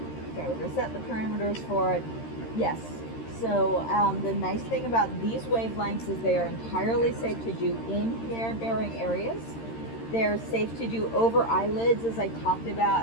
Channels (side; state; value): right; late; 13 ms